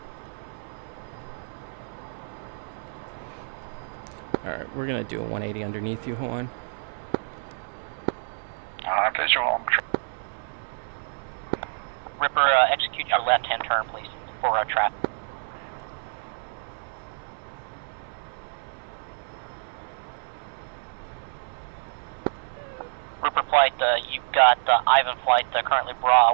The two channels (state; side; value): silent; left; 60 dB below the other